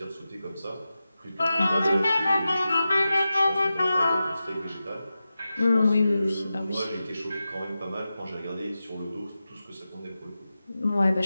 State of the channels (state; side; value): inverted; both; correlation -0.93